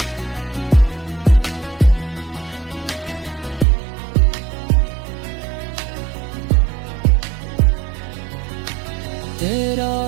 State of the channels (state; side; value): drops out; left; at 3.7 s